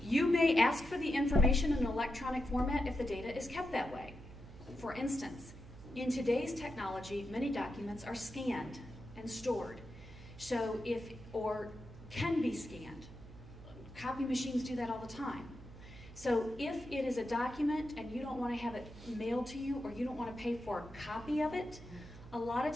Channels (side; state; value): right; noise; hum, 16 dB below the sound